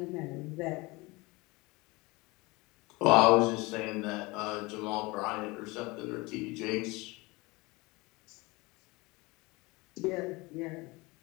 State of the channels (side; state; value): right; quieter; 23.8 dB